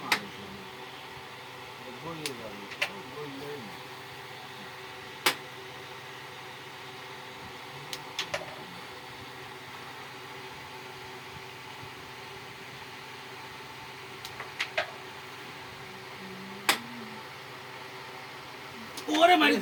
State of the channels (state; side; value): identical; both; correlation 1.00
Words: মারিছে বলিয়ে যাবে বললেই না ওরে মারি